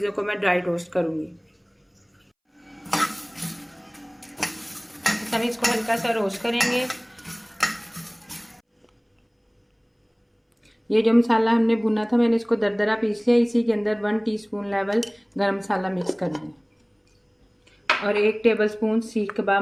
को मैं ड्राई रोस्ट करूँगी। हम इसको हल्का सा रोस्ट करेंगे। ये जो मसाला हमने भुना था मैंने इसको दरदरा पीस लिया। इसी के अंदर 1 टीस्पून लेवल गरम मसाला मिक्स कर लें, और 1 टेबलस्पून सीख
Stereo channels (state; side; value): identical; both; correlation 1.00